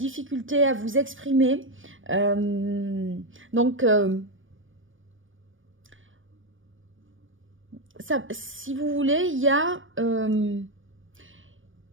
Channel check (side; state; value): left; late; 0.57 ms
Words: à vous exprimer. Si vous voulez, il y a